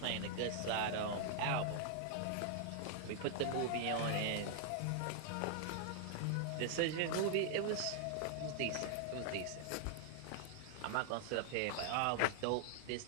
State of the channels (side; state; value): both; different; correlation -0.01